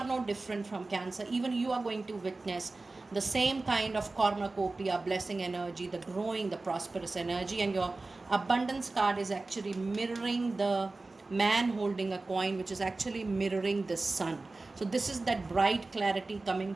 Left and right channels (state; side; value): quieter; left; 3.3 dB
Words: no different from Cancer. Even you are going to witness the same kind of cornucopia, blessing energy, the growing, the prosperous energy. And your abundance card is actually mirroring the man holding a coin, which is actually mirroring the sun. So this is that bright clarity coming